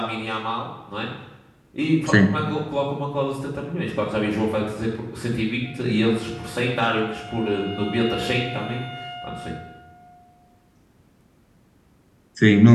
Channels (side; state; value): both; identical; correlation 1.00